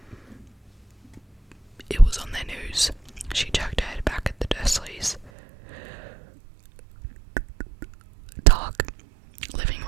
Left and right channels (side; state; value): left; drops out; at 5.3 s